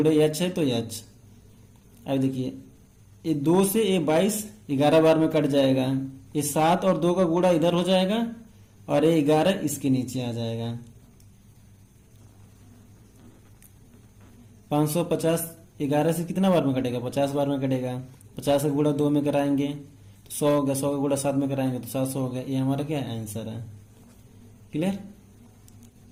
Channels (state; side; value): identical; both; correlation 1.00